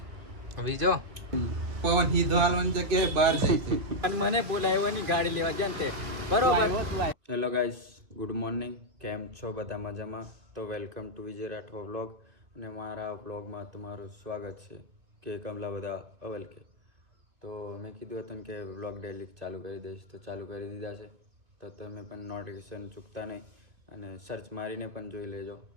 બીજો પવન હીધો હાલવાની જગ્યાએ બહાર જાય છે અને મને બોલાવ્યો ગાડી લેવા જાય તે બરોબર. Hello guys, good morning. કેમ છો બધા? મજામાં? તો welcome to Vijay Rathwa vlog. અને મારા વ્લોગમાં તમારું સ્વાગત છે કે કમલા બધા અવલ કે. તો મેં કીધું હતું કે વ્લોગ ડેલી ચાલુ કરી દઈશ, તો ચાલુ કરી દીધા છે. તો તમે પણ નોટિફિકેશન ચૂકતા નહીં અને સર્ચ મારીને પણ જોઈ લેજો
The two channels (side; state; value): left; late; 2.2 ms